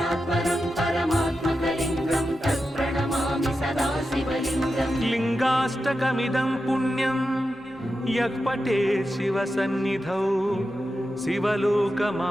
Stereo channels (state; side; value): normal; both; correlation 0.90